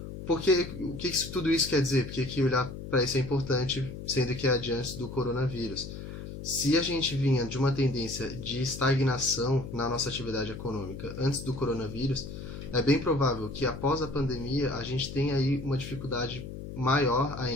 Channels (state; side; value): noise; left; hum, 10 dB below the sound